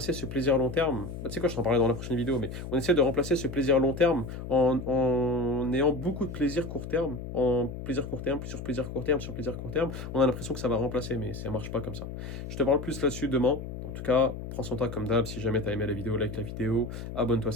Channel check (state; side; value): noise; left; hum, 8 dB below the sound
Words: ce plaisir long terme, tu sais quoi, je t'en parlerai dans la prochaine vidéo, mais on essaie de remplacer ce plaisir long terme en ayant beaucoup de plaisir court terme, en plaisir court terme, sur plaisir court terme, sur plaisir court terme. On a l'impression que ça va remplacer, mais ça marche pas comme ça. Je te parle plus là-dessus demain. En tout cas, prends soin de toi comme d'hab. Si jamais tu as aimé la vidéo, like la vidéo, abonne-toi